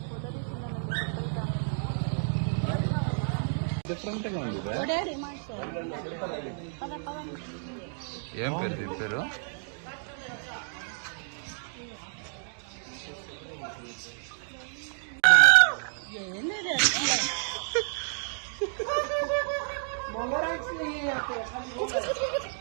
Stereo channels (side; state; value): left; silent; digital silence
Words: డిఫరెంట్గా ఉంది. ఏం పేరు దీని పేరు?